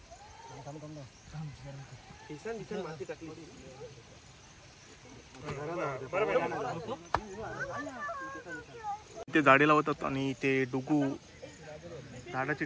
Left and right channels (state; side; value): identical; both; correlation 1.00